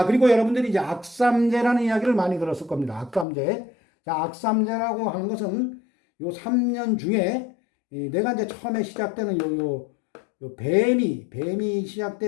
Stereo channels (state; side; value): drops out; right; at 3.2 s